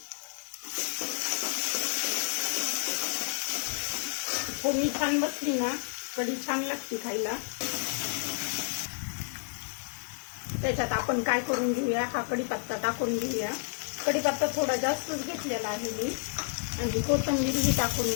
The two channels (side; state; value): right; silent; digital silence